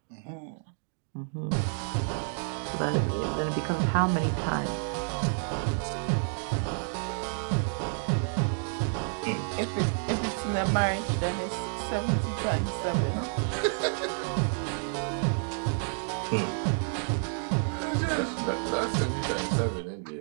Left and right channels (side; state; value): left; silent; 58 dB below the other